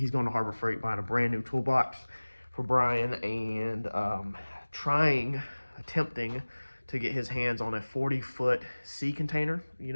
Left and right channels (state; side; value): inverted; both; correlation -1.00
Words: going to Harbor Freight buying a brand new toolbox for Bryan and attempting to get his hands on a 40-foot sea container, you